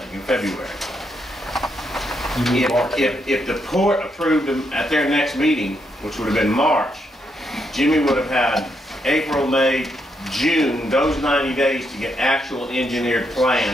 in February. If the port approved them at their next meeting, which would have been March, Jimmy would have had April, May, June, those 90 days to get actual engineered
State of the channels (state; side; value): normal; both; correlation 0.79